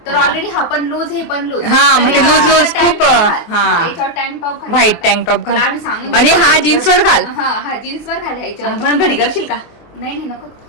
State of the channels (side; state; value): right; late; 24 ms